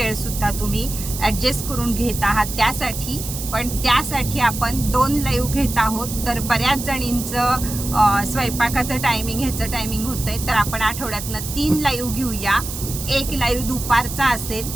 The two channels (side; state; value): right; noise; hiss, 8 dB below the sound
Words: सुद्धा तुम्ही ॲडजस्ट करून घेत आहात त्यासाठी. पण त्यासाठी आपण 2 लाईव्ह घेत आहोत. तर बऱ्याच जणींचं स्वयंपाकाचं टायमिंग ह्याचं टायमिंग होतंय, तर आपण आठवड्यातनं 3 लाईव्ह घेऊया. एक लाईव्ह दुपारचा असेल,